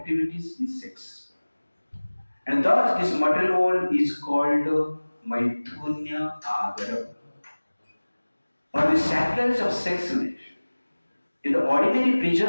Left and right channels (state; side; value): inverted; both; correlation -1.00